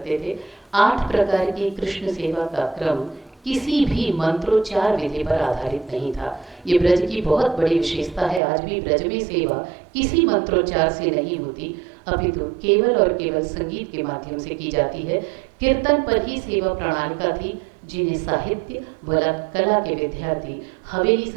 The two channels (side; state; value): left; drops out; at 8.4 s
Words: थे। 8 प्रकार की कृष्ण सेवा का क्रम किसी भी मंत्रोच्चार विधि पर आधारित नहीं था। ये ब्रज की बहुत बड़ी विशेषता है। आज भी ब्रज में सेवा किसी मंत्रोच्चार से नहीं होती, अपितु केवल और केवल संगीत के माध्यम से की जाती है। कीर्तन पर ही सेवा प्रणालिका थी, जिन्हें साहित्य व कला के विद्यार्थी हवेली